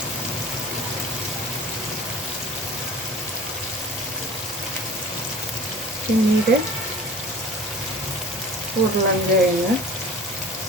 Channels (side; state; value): both; normal; correlation 0.41